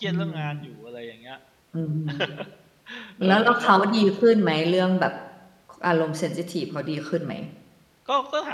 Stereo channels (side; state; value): both; identical; correlation 1.00